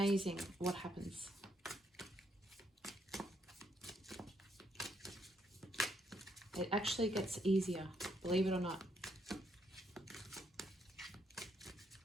what happens. It actually gets easier, believe it or not.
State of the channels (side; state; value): both; normal; correlation 0.74